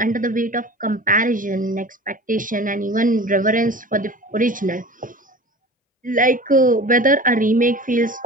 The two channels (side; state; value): both; normal; correlation 0.38